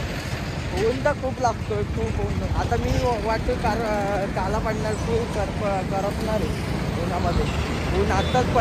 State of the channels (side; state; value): both; identical; correlation 1.00